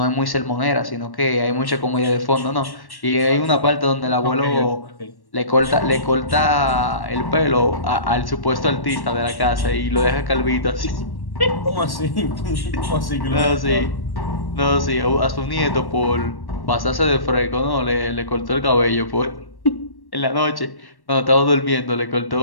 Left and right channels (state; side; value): late; right; 1.1 ms